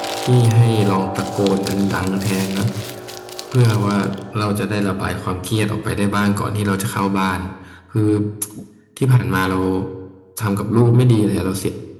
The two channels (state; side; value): identical; both; correlation 1.00